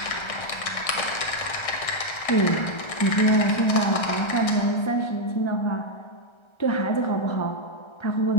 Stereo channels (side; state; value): right; late; 1.3 ms